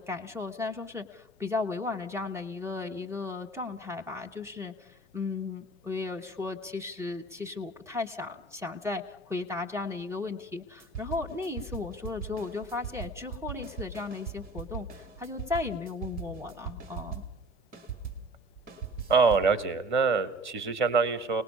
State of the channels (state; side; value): normal; both; correlation 0.46